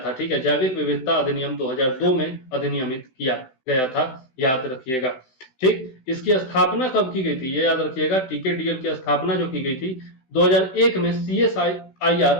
ठीक है, जैविक विविधता अधिनियम 2002 में अधिनियमित किया गया था, याद रखिएगा। ठीक, इसकी स्थापना कब की गई थी, ये याद रखिएगा। टीकेडीएल की स्थापना जो की गई थी 2001 में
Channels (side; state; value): right; late; 16 ms